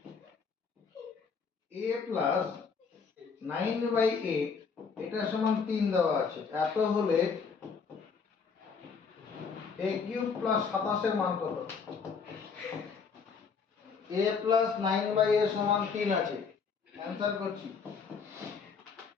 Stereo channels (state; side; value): quieter; right; 5.6 dB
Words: a + 9/8 এটা সমান 3 দেওয়া আছে। এত হলে a³ + 27 এর মান কত? a + 9/8 সমান 3 আছে, অ্যানসার করছি।